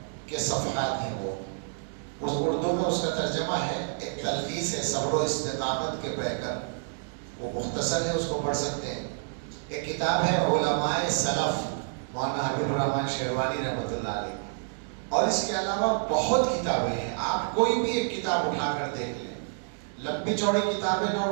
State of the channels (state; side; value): silent; left; digital silence